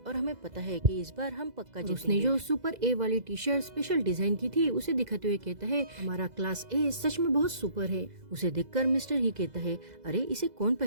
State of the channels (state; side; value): late; left; 2.0 ms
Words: हमें पता है कि इस बार हम पक्का जीतेंगे। उसने जो सुपर ए वाली टी शर्ट स्पेशल डिजाइन की थी उसे दिखाते हुए कहता है हमारा क्लास ए सच में बहुत सुपर है। उसे देखकर मिस्टर ही कहता है अरे इसे कौन